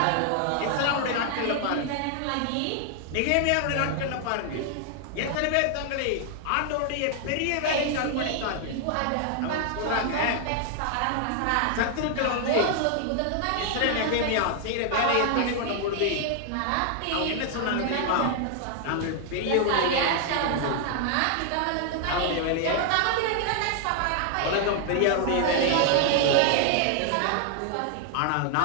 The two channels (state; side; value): different; both; correlation 0.00